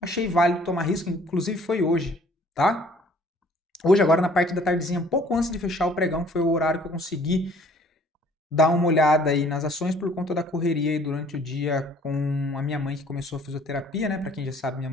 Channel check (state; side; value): normal; both; correlation 0.57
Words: válido tomar risco, inclusive foi hoje, tá? Hoje, agora na parte da tardezinha, um pouco antes de fechar o pregão, que foi o horário que eu consegui dar uma olhada aí nas ações por conta da correria aí durante o dia com a minha mãe que começou a fisioterapia, né? Para quem já sabe, minha